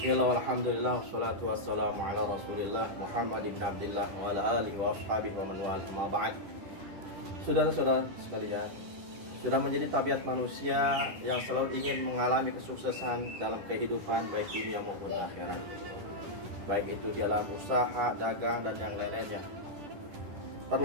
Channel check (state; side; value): late; left; 10 ms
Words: alhamdulillah, wassalatu wassalamu ala rasulillah Muhammad ibn Abdillah wa ala alihi wa ashabihi wa man wala amma ba'd. Saudara-saudara sekalian, sudah menjadi tabiat manusia yang selalu ingin mengalami kesuksesan dalam kehidupan baik dunia maupun akhirat, baik itu dalam usaha, dagang, dan yang lain-lainnya.